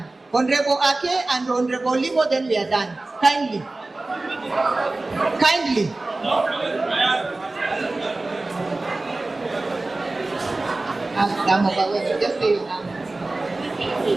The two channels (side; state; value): left; quieter; 3.1 dB